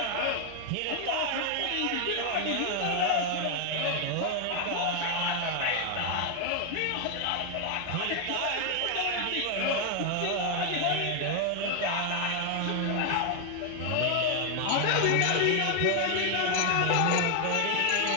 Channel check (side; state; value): both; different; correlation 0.01